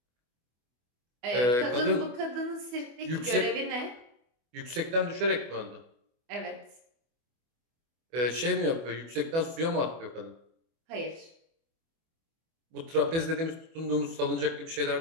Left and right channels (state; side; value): late; left; 24 ms